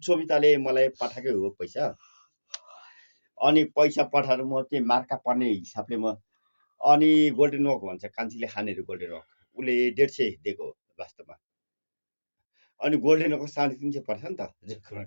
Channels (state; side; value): inverted; both; correlation -1.00